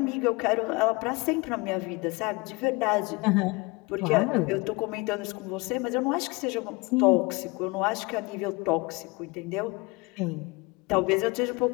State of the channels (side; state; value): right; quieter; 25.5 dB